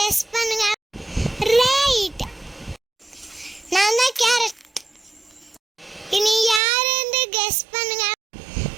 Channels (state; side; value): drops out; left; at 6.6 s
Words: பண்ணுங்க. ரைட், நான் தான் கேரட். இனி யார்